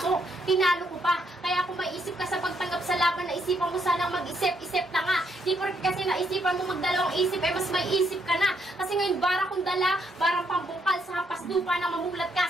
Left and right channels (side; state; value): both; normal; correlation 0.74